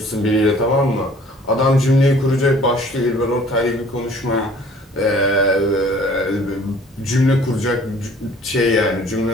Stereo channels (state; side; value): normal; both; correlation 0.53